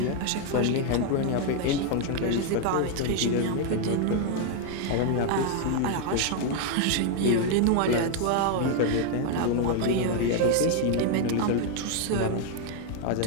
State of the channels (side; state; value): both; different; correlation 0.01